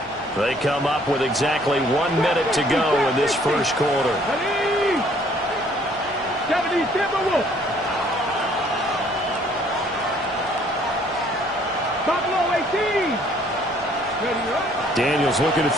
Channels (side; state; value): both; normal; correlation 0.61